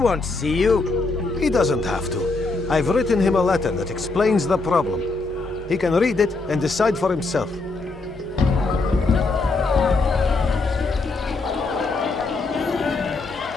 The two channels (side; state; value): right; quieter; 3.6 dB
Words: see you. He doesn't have to. I've written him a letter that explains the problem. He can read it and decide for himself.